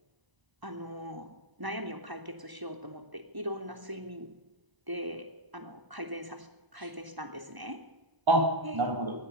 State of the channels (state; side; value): late; left; 1.0 ms